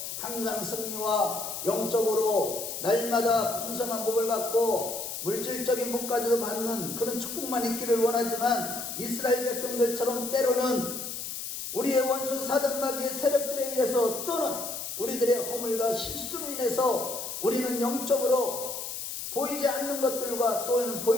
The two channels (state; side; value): noise; left; hiss, 6 dB below the sound